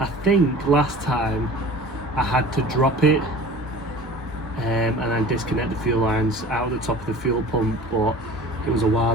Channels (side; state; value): both; normal; correlation 0.42